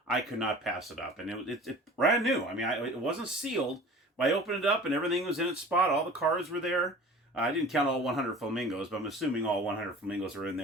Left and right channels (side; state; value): both; normal; correlation 0.42